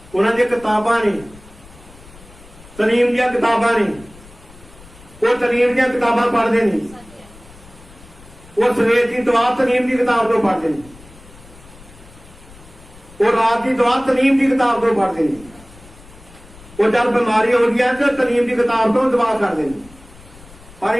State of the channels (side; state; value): left; noise; rumble, 22 dB below the sound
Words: ਦੀਆਂ ਕਿਤਾਬਾਂ ਨੇ, ਤਲੀਮ ਦੀਆਂ ਕਿਤਾਬਾਂ ਨੇ। ਉਹ ਤਲੀਮ ਦੀਆਂ ਕਿਤਾਬਾਂ ਪੜ੍ਹਦੇ ਨੇ। ਉਹ ਸਵੇਰ ਦੀ ਦੁਆ ਤਲੀਮ ਦੀ ਕਿਤਾਬ ਤੋਂ ਪੜ੍ਹਦੇ ਨੇ। ਉਹ ਰਾਤ ਦੀ ਦੁਆ ਤਲੀਮ ਦੀ ਕਿਤਾਬ ਤੋਂ ਪੜ੍ਹਦੇ ਨੇ। ਉਹ ਜਦ ਬਿਮਾਰੀ ਹੋ ਗਈ ਤਾਂ ਤਲੀਮ ਦੀ ਕਿਤਾਬ ਤੋਂ ਦੁਆ ਕਰਦੇ ਨੇ। ਪਰ